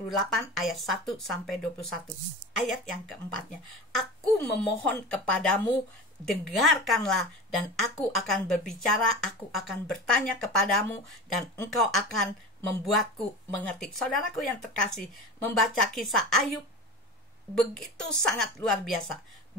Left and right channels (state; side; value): normal; both; correlation 0.31